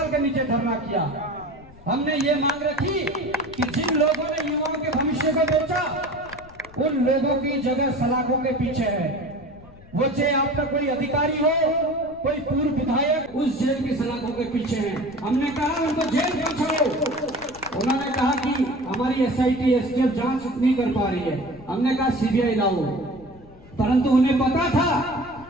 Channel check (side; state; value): left; noise; rumble, 22 dB below the sound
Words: के नीचे धरना किया। हमने ये मांग रखी कि जिन लोगों ने युवाओं के भविष्य को बेचा, उन लोगों की जगह सलाखों के पीछे है। वो चाहे आपका कोई अधिकारी हो, कोई पूर्व विधायक, उस जेल की सलाखों के पीछे है। हमने कहा उनको जेल पहुंचाओ। उन्होंने कहा कि हमारी SIT STF जांच नहीं कर पा रही है। हमने कहा CBI लाओ, परंतु उन्हें पता था